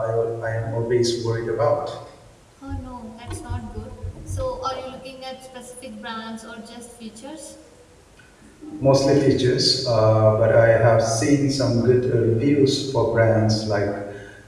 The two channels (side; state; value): both; identical; correlation 1.00